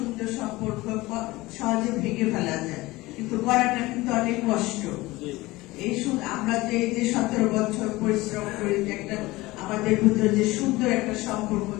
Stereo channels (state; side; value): quieter; right; 19.9 dB